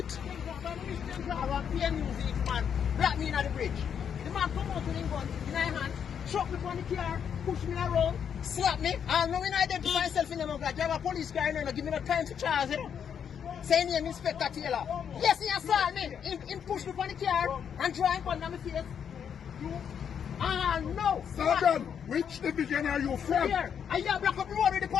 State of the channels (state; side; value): quieter; right; 7.9 dB